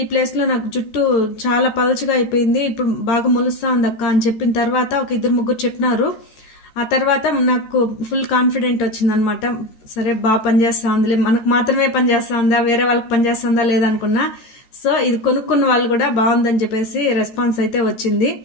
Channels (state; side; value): late; right; 14 ms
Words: ఈ ప్లేస్లో నాకు జుట్టు చాలా పలచగా అయిపోయింది, ఇప్పుడు బాగా మొలుస్తా ఉంది అక్క అని చెప్పిన తర్వాత ఒక 2-3 చెప్పినారు. ఆ తర్వాత నాకు ఫుల్ కాన్ఫిడెంట్ వచ్చిందనమాట. సరే బాగా పనిచేస్తా ఉందిలే, మనకు మాత్రమే పనిచేస్తా ఉందా, వేరే వాళ్ళకి పనిచేస్తుందా లేదనుకున్నా. సో ఇది కొనుక్కున్న వాళ్ళు కూడా బాగుందని చెప్పేసి రెస్పాన్స్ అయితే వచ్చింది.